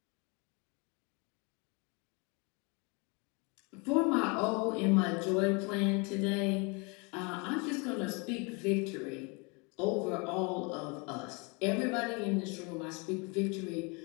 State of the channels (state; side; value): quieter; right; 30.7 dB